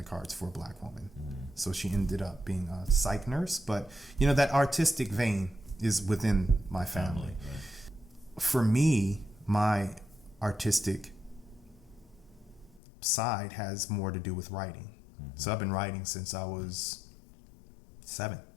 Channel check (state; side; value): drops out; right; at 12.8 s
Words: cards for a black woman. So she ended up being a psych nurse. But, that artistic vein is within my family. Right. For me, my artistic side has more to do with writing. Mm-hmm. So I've been writing since I was 7.